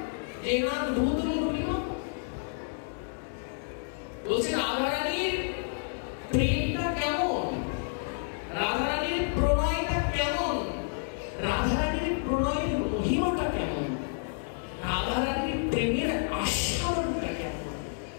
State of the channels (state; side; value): silent; right; digital silence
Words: জেনাদ ভূত মধুরিমা। বলছেন রাধা রানীর প্রেমটা কেমন, রাধা রানীর প্রণয়টা কেমন, রাধা রানীর প্রণয়ের মহিমাটা কেমন, রাধা রানীর প্রেমের আস্বাদনটা কেমন,